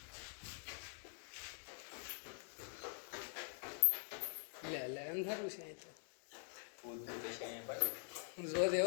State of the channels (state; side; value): silent; right; digital silence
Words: લે લે અંધારું છે અહીં તો. જો